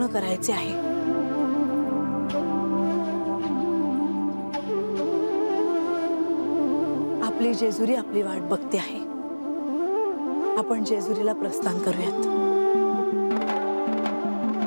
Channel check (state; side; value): inverted; both; correlation -1.00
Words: करायचे आहे. आपली जेजुरी आपली वाट बघते आहे. आपण जेजुरीला प्रस्थान करूयात.